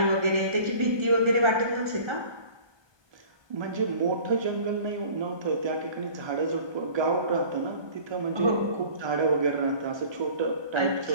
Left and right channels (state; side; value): late; left; 1.2 ms